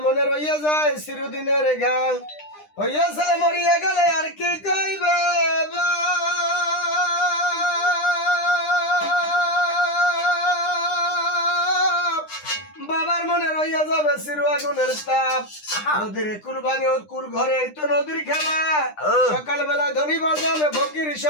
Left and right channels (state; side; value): late; right; 9.9 ms